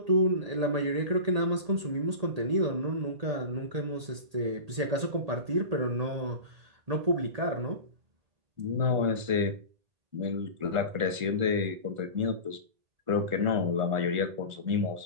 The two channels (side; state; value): left; late; 1.8 ms